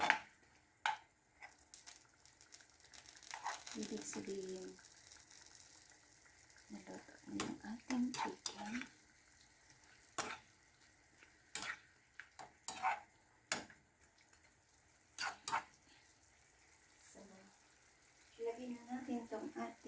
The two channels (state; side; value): identical; both; correlation 1.00